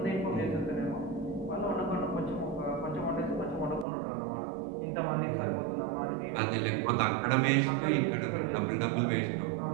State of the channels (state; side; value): drops out; left; at 3.9 s